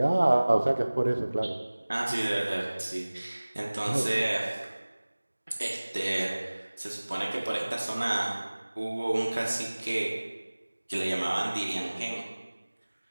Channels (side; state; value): both; inverted; correlation -1.00